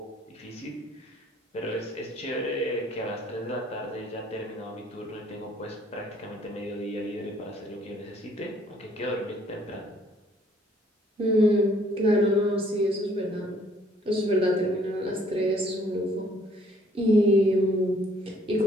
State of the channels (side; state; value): both; normal; correlation 0.62